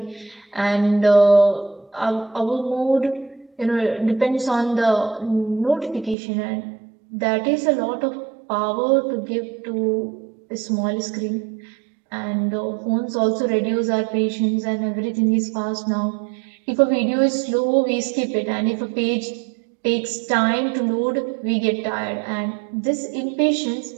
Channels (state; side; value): drops out; left; at 6.2 s